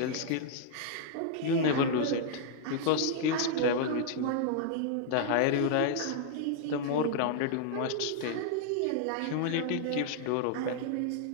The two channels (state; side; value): different; both; correlation -0.01